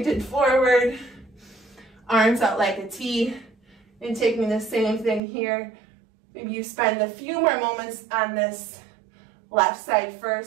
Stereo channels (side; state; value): left; drops out; at 5.2 s